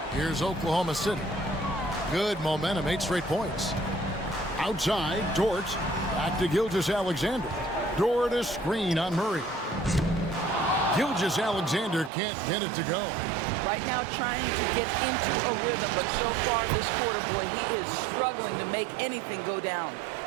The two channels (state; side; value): drops out; left; at 12.1 s